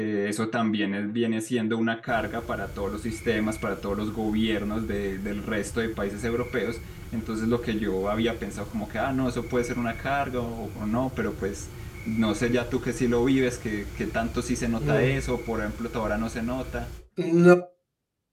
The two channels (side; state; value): both; identical; correlation 1.00